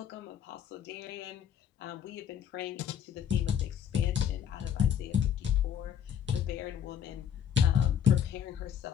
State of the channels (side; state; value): right; quieter; 8.9 dB